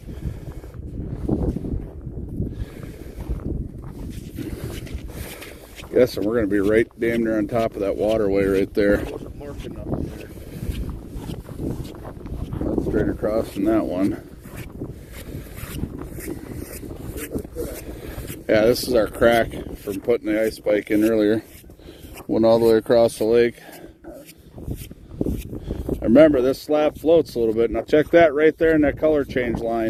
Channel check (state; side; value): identical; both; correlation 1.00